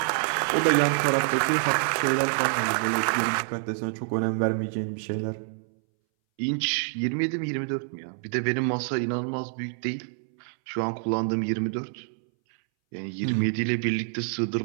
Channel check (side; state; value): left; silent; 60 dB below the other